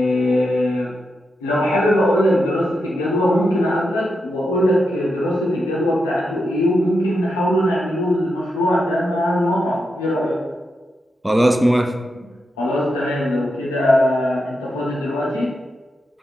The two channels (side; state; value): both; normal; correlation 0.86